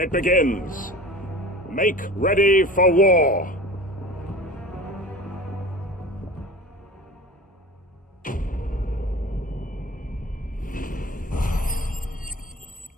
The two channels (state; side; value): normal; both; correlation 0.37